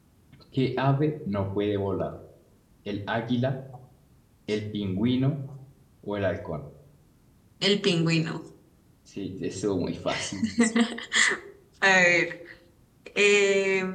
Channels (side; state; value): both; identical; correlation 1.00